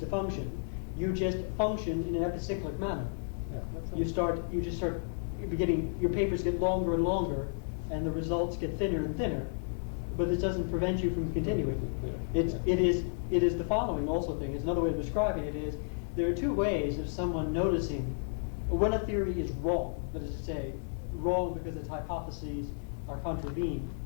function. You just function in an epicyclic manner. You just start beginning. Your papers get longer and longer, and the results get thinner and thinner. But this doesn't prevent you from continuing. It is the following also thing. It's another way of describing it is there are two ways of someone noticing when a theory is wrong. That is to say, wrong because its hypotheses are contravened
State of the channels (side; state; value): right; silent; 56 dB below the other